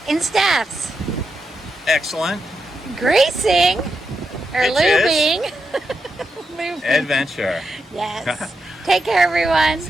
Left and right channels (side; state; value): both; normal; correlation 0.86